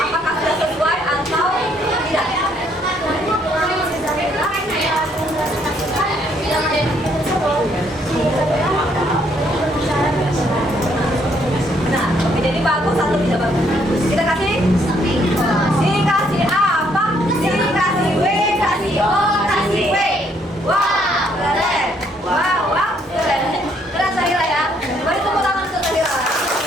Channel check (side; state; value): both; normal; correlation 0.69